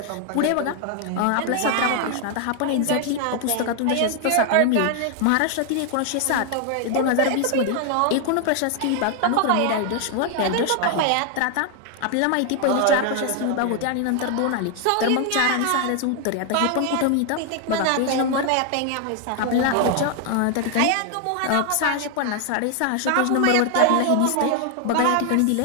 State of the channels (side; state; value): both; different; correlation 0.00